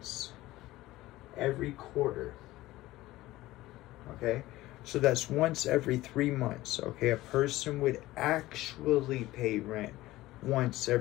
every quarter. Okay, so that's once every 3 months. Okay, a person would actually pay rent once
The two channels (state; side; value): quieter; right; 17.2 dB